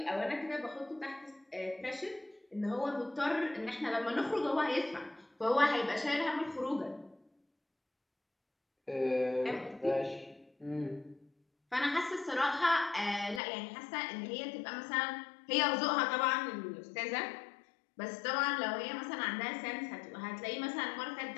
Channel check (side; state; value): right; drops out; at 13.4 s